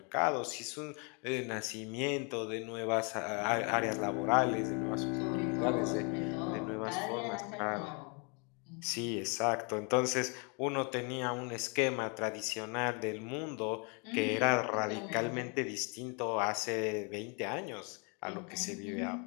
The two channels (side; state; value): right; quieter; 34.6 dB